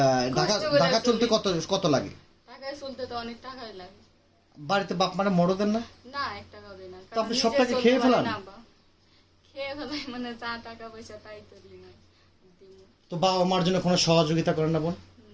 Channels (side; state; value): both; identical; correlation 1.00